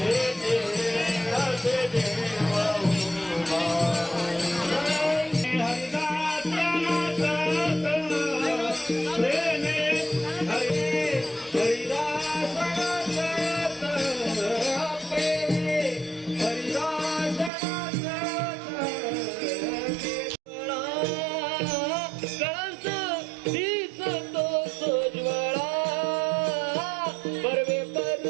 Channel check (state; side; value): drops out; left; at 17.5 s